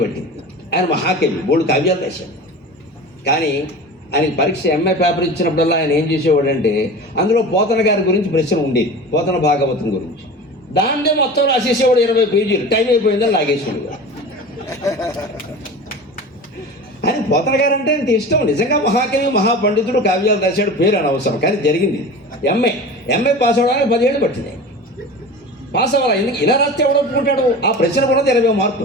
పట్టింది. ఆయన మహాకవి, బోల్డు కావ్యాలు రాశాడు. కానీ ఆయనకి పరీక్ష ఎంఏ పేపర్ ఇచ్చినప్పుడల్లా ఆయన ఏం చేసేవాడంటే అందులో పోతన గారి గురించి ప్రశ్న ఉండేది, పోతన భాగవతం గురించి. దాన్నే మొత్తం రాసేసేవాడు 20 పేజీలు. టైం అయిపోయిందని లాగేసేవాడు. ఆయన పోతన గారు అంటే ఇంత ఇష్టం. నిజంగా మహాకవి, మహాపండితుడు, కావ్యాలు రాశాడు, పేరు అనవసరం. కానీ జరిగింది ఎంఏ పాస్ అవ్వడానికి 10 ఏళ్ళు పట్టింది. పాస్ అవ్వాలి. ఎందుకు ఇలా రాస్తే ఎవడు ఒప్పుకుంటాడు? ఆ ప్రశ్న కూడా 20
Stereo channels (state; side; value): normal; both; correlation 0.34